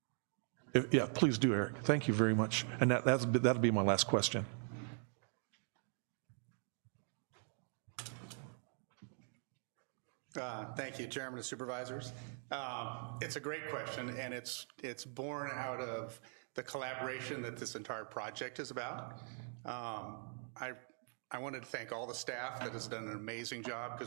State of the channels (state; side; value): silent; left; 50 dB below the other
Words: Yeah, please do, Eric. Thank you very much. And that'll be my last question. Thank you, Chairman and Supervisors. It's a great question, and it's born out of the collaboration that this entire project is about. I wanted to thank all the staff that has done an amazing job,